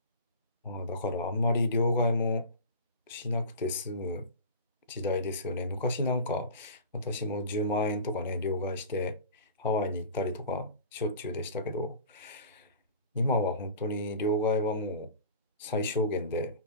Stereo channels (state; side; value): inverted; both; correlation -0.36